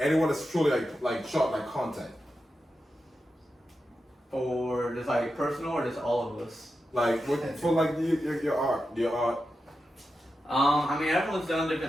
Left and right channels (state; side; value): normal; both; correlation 0.90